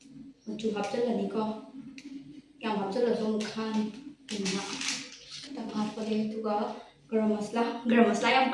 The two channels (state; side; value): identical; both; correlation 1.00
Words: ꯍꯥꯞꯆꯤꯜꯂꯅꯤꯀꯣ ꯌꯥꯝ ꯍꯥꯞꯆꯤꯜꯂꯁꯨ ꯑꯃꯨꯛ ꯈꯥꯅꯤ ꯈꯤꯇꯪ ꯍꯥꯞꯄꯒꯦ ꯑꯗꯨꯒ ꯒꯔꯝ ꯃꯁꯂꯥ ꯌꯥꯝ